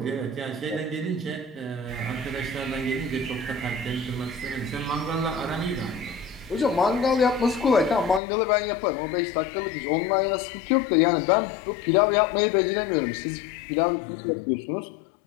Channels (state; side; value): drops out; right; at 8.2 s